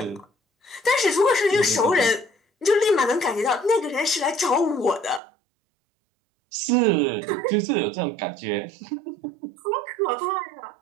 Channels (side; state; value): left; drops out; at 5.2 s